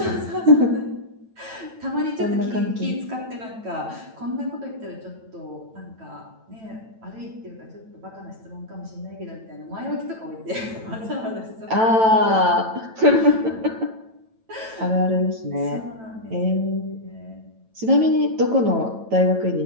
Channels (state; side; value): late; left; 9.0 ms